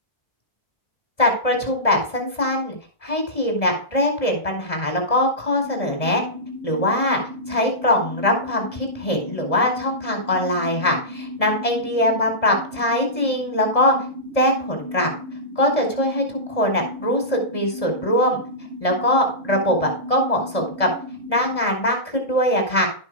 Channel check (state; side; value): late; right; 1.7 ms